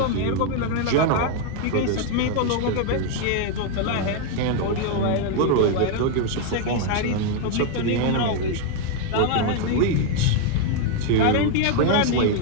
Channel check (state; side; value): different; both; correlation 0.01